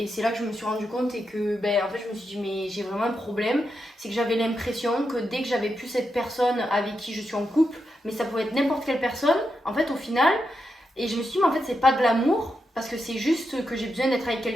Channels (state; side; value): normal; both; correlation 0.85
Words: c'est là que je me suis rendu compte et que en fait je me suis dit mais j'ai vraiment un problème, c'est que j'avais l'impression que dès que j'avais plus cette personne avec qui je suis en couple, mais ça pouvait être n'importe quelle personne en fait au final, et je me suis dit mais en fait c'est pas de l'amour parce que c'est juste que j'ai besoin d'être avec